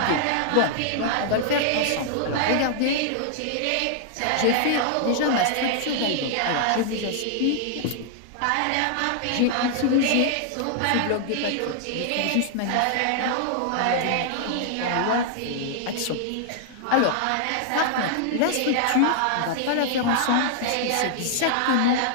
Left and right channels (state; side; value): different; both; correlation 0.00